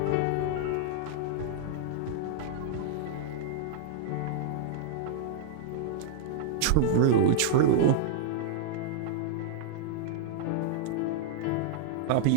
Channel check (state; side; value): different; both; correlation -0.01